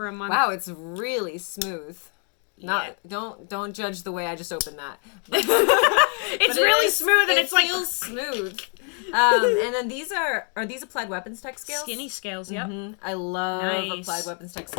a month. Wow, it's really smooth. Yeah. Don't judge the way I just opened that. It's really smooth, and it's like feels smooth. And then these are these Applied Weapons Tech scales? skinny scales. Yep. I love Nice. Applied Weapons Tech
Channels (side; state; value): right; quieter; 39.5 dB